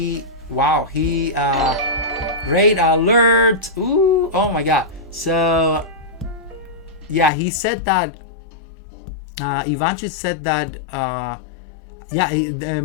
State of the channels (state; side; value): drops out; right; at 7.3 s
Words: alert. Ooh, oh my god. So yeah, he said that Ivanchuk said that